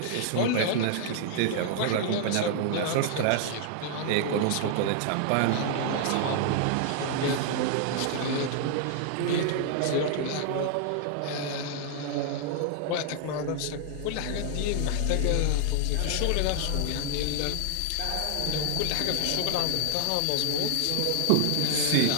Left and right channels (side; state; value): both; different; correlation 0.00